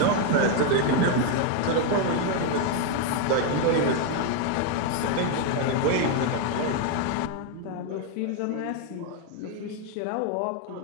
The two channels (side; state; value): both; different; correlation 0.01